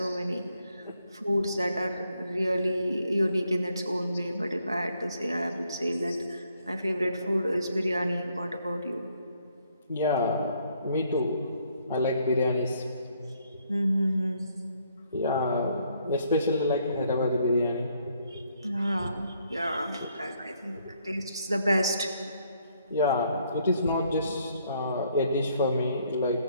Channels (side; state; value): both; inverted; correlation -0.70